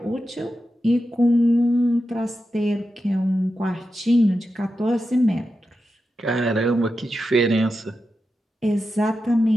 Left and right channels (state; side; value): normal; both; correlation 0.90